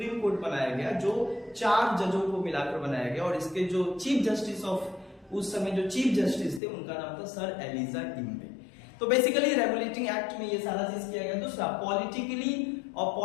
कोर्ट बनाया गया जो 4 जजों को मिलाकर बनाया गया, और इसके जो चीफ जस्टिस ऑफ उस समय जो चीफ जस्टिस थे उनका नाम था सर एलिजा इम्बे। तो बेसिकली रेगुलेटिंग एक्ट में ये सारा चीज किया गया। दूसरा, पॉलिटिकली और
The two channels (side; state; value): right; drops out; at 6.6 s